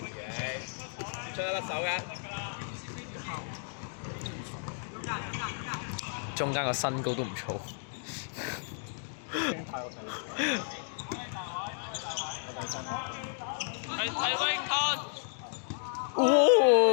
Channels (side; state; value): right; silent; digital silence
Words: 嘢，出得甩手㗎。中間個身高都唔錯。係威康。